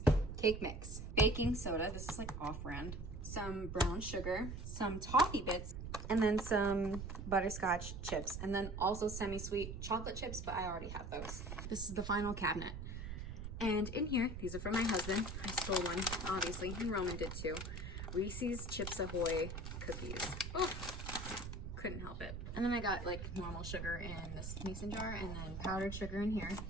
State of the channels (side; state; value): right; noise; rumble, 7 dB below the sound